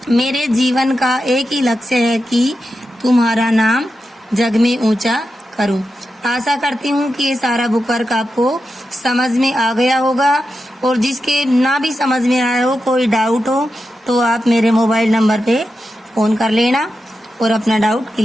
मेरे जीवन का एक ही लक्ष्य है कि तुम्हारा नाम जग में ऊंचा करूं। आशा करती हूँ कि ये सारा बुक वर्क आपको समझ में आ गया होगा, और जिसके ना भी समझ में आया हो, कोई डाउट हो, तो आप मेरे मोबाइल नंबर पे फ़ोन कर लेना और अपना डाउट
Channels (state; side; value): normal; both; correlation 0.89